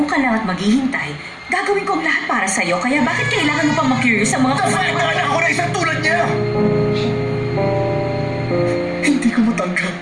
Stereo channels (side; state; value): both; identical; correlation 1.00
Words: ka lang at maghihintay, gagawin ko ang lahat para sa'yo. Kaya bakit kailangan mo pang ma-curious sa mga Kasalitaan ako na isang tulad niya! Hindi ko matanggap.